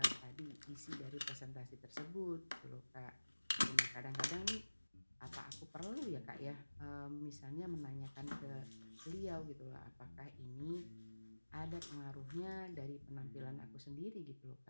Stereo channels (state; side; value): inverted; both; correlation -1.00